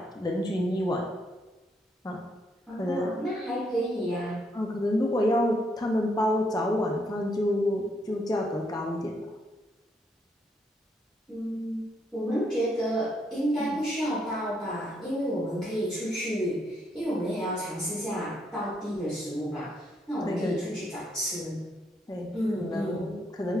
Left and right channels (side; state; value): both; normal; correlation 0.74